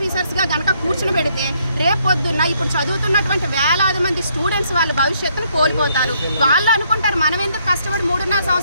కనుక కూర్చుని పెడితే రేపు పొద్దున్న ఇప్పుడు చదువుతున్నటువంటి వేలాది మంది స్టూడెంట్స్ వాళ్ళ భవిష్యత్తును కోల్పోతారు. వాళ్ళు అనుకుంటారు మనం ఎందుకు కష్టపడి 3.5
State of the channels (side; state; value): both; inverted; correlation -0.70